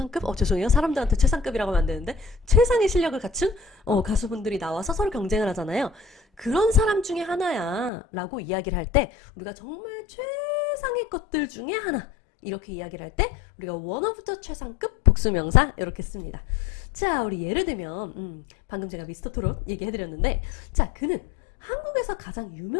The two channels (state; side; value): drops out; right; at 7.9 s